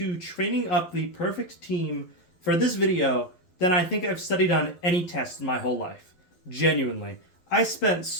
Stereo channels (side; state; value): right; late; 12 ms